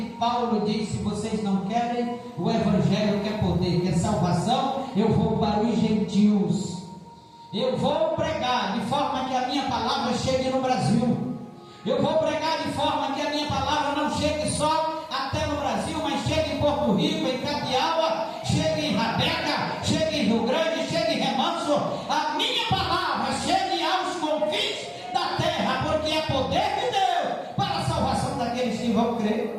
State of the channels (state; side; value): identical; both; correlation 1.00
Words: Paulo diz: se vocês não querem o evangelho, quer poder, quer salvação, eu vou para os gentios. Eu vou pregar de forma que a minha palavra chegue no Brasil. Eu vou pregar de forma que a minha palavra não chegue só até no Brasil, mas chegue em Porto Rico, em Capiaua, chegue em Rabeca, chegue em Rio Grande, chegue em Remanso. A minha palavra chegue aos confins da terra, porque é poder de Deus para a salvação daqueles que vão crer.